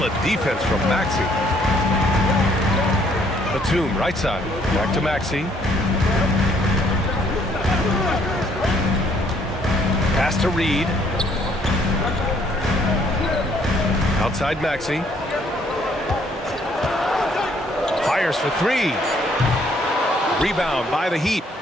defense from Maxey. Batum, right side. Back to Maxey. Pass to Reed. Outside Maxey. Fires for 3. Rebound by the Heat.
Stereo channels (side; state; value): both; normal; correlation 0.65